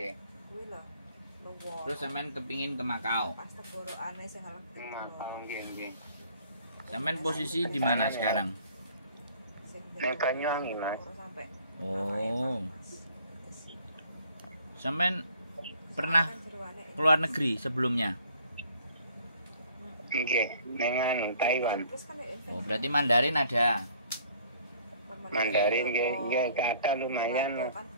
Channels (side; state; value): both; inverted; correlation -0.58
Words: Kuwi lho. Terus sampean kepingin ke Makau. Pas tenggorokane sing ngelek. Makau nggih. Sampean posisi di mana sekarang? Banyuwangi, Mas. Oh. Sampean pernah keluar negeri sebelumnya? Nggih, nengan Taiwan. Oh, berarti Mandarin ada. Mandarin nggih kata lumayan.